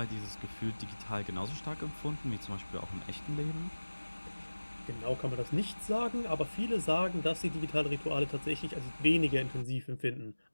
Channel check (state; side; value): inverted; both; correlation -1.00